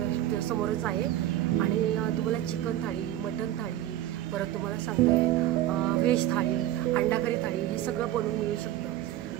समोरच आहे. आणि तुम्हाला चिकन थाळी, मटन थाळी, परत तुम्हाला सांगते व्हेज थाळी, अंडा करी थाळी हे सगळं बनवून मिळू शकतं.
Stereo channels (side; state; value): left; quieter; 13.3 dB